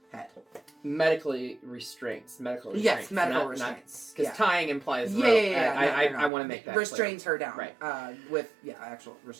head. Medically restraints. Yes, medical restraints. Because tying implies rope. Yeah. I want to make that restrains clear. her down. Right. With actual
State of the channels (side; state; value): left; drops out; at 6.3 s